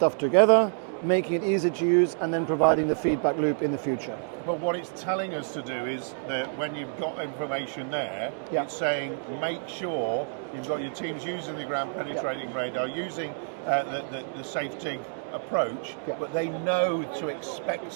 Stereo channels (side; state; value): left; silent; digital silence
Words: together, making it easy to use, and then providing the feedback loop in the future. But what it's telling us to do is that when you've got information there, it's saying make sure you've got your teams using the ground penetrating radar, using the safe dig approach, but they know to expect